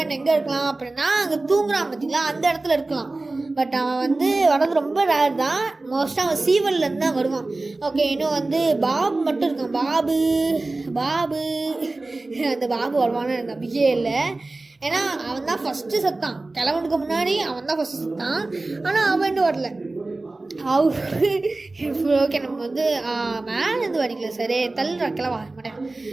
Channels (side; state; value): left; quieter; 3.1 dB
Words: எங்கே இருக்கலாம் அப்படின்னா அங்கே தூங்குறான் பார்த்தீங்களா, அந்த இடத்துல இருக்கலாம். பட் அவன் வந்து வரது ரொம்ப ரேர் தான். மோஸ்ட்டாக அவன் சீவல்லேருந்து தான் வருவான். ஓகே, இன்னும் வந்து பாபு மட்டும் இருக்கான். பாபு அந்த பாபு வருவான்னு எனக்கு நம்பிக்கையே இல்லை. ஏன்னா அவன் தான் ஃபஸ்ட்டு செத்தான், கிழவனுக்கு முன்னாடி அவன் தான் ஃபஸ்ட்டு செத்தான். ஆனால் அவன் இன்னும் வரல. ஓகே, நம்ம வந்து மேலேருந்து வடிக்கல, சரி தள்ளுறா கிளவா மாட்டேன்.